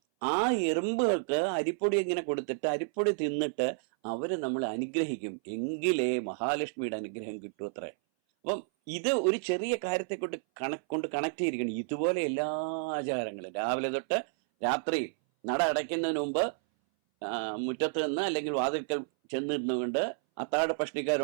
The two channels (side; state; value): left; silent; 57 dB below the other